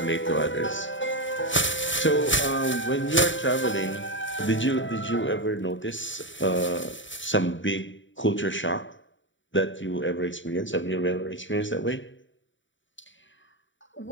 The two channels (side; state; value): right; late; 0.55 ms